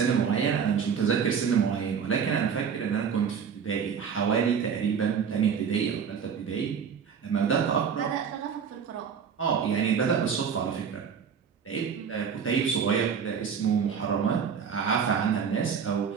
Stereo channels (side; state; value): left; quieter; 6.9 dB